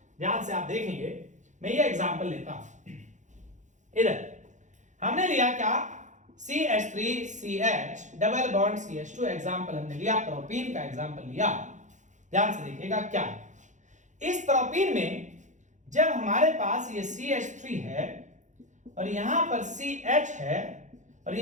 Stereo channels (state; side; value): late; left; 0.35 ms